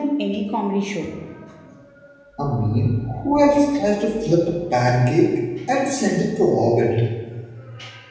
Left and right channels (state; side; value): identical; both; correlation 1.00